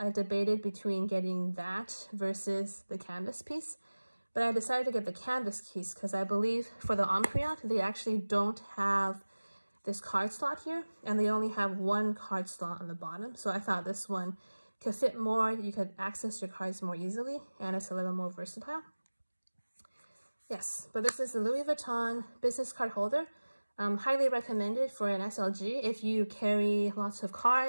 debated between getting that versus the canvas piece, but I decided to get the canvas piece because I believe for the Empreinte, they actually don't have this card slot here, and they only have one card slot on the bottom. So I thought this one could fit more, you could access your cards more easily, and it's a little more versatile. Yes, but this is the Louis Vuitton business card holder. Highly recommended for an SLG if you carry lots of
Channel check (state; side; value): inverted; both; correlation -1.00